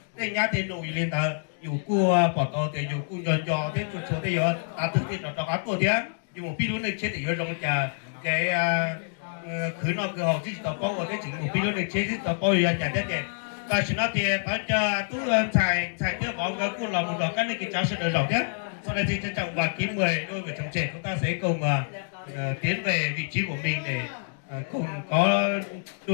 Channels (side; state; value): right; silent; digital silence